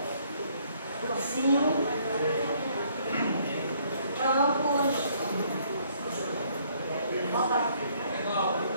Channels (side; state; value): both; inverted; correlation -0.65